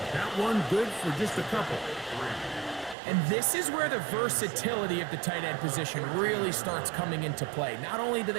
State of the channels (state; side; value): drops out; left; at 3.0 s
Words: That one good for just a couple. And this is where the versatility of the tight end position really starts coming into play. Not only do